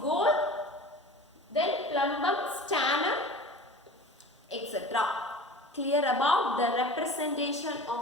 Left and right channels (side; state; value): both; normal; correlation 0.38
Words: then plumbum, stannum, etc. Clear about the representation